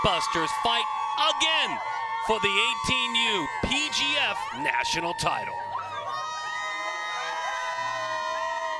fight again for the 18U PGF national title.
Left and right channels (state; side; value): identical; both; correlation 1.00